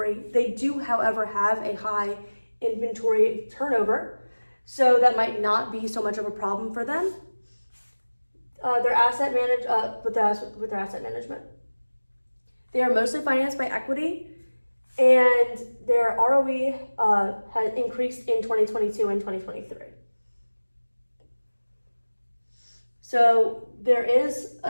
They do, however, have a high inventory turnover, so that might not be so much of a problem for them. With their asset management. They are mostly financed by equity, and their ROE has increased in 2022 and 2023. So there is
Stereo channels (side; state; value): both; inverted; correlation -1.00